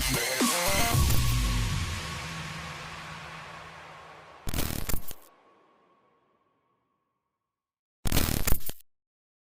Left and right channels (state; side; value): identical; both; correlation 1.00